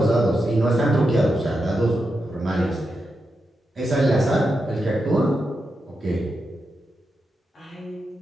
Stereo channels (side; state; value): both; normal; correlation 0.87